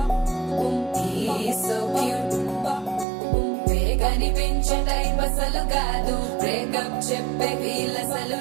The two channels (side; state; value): left; drops out; at 3.1 s